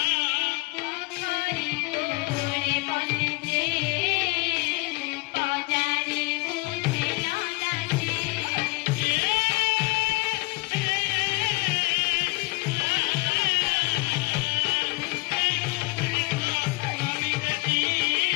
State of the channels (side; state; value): right; quieter; 26.0 dB